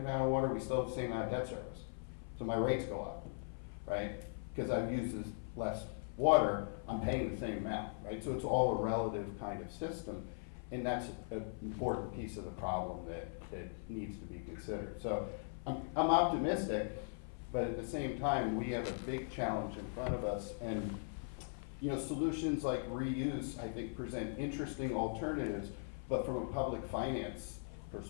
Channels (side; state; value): right; silent; 51 dB below the other